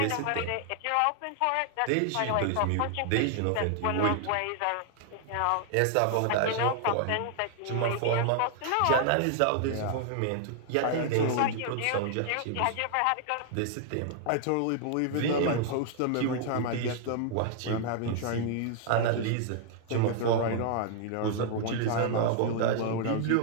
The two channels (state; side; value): different; both; correlation 0.00